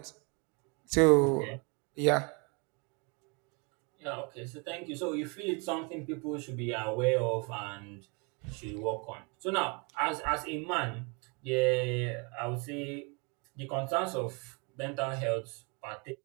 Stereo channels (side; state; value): left; quieter; 32.5 dB